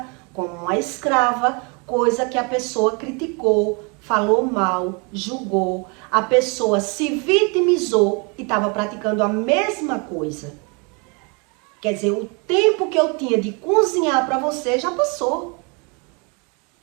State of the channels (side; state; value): left; quieter; 32.5 dB